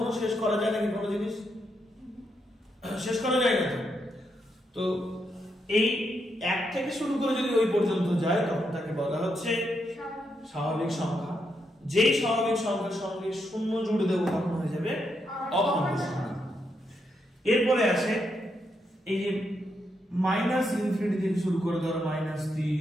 শেষ করা যায় নাকি কোনো জিনিস? শেষ করা যায় না। তো এই 1 থেকে শুরু করে যদি ওই পর্যন্ত যায় তখন তাকে বলা হচ্ছে স্বাভাবিক সংখ্যা। যেই স্বাভাবিক সংখ্যার সঙ্গে 0 জুড়ে দেবো তখন হয়ে যাবে অখণ্ড সংখ্যা। এরপরে আসে এই যে মাইনাস ইনফিনিটি থেকে শুরু করে, ধরো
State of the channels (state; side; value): normal; both; correlation 0.81